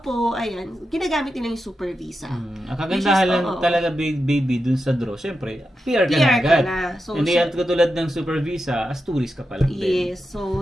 ayan, ginagamit nila yung super visa. Ang kagandahan lang talaga baby dun sa draw, syempre, PR ka na agad. So, hindi yan katulad ng super visa, as tourist ka pa lang din. Yes, so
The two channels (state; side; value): normal; both; correlation 0.89